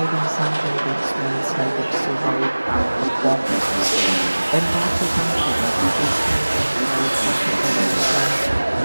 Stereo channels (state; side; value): inverted; both; correlation -1.00